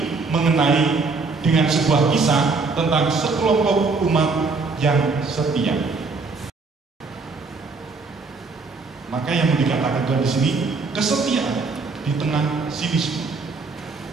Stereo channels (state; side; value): quieter; left; 4.2 dB